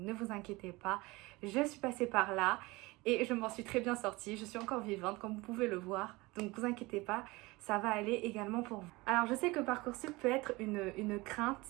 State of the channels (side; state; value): left; quieter; 22.5 dB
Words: vous inquiétez pas, je suis passée par là. Et je m'en suis très bien sortie, je suis encore vivante comme vous pouvez le voir, donc vous inquiétez pas, ça va aller également pour vous. Alors je sais que Parcoursup peut être une crainte,